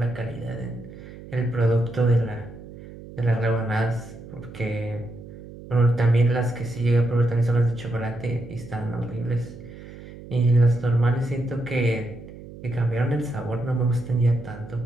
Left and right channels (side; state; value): right; noise; hum, 16 dB below the sound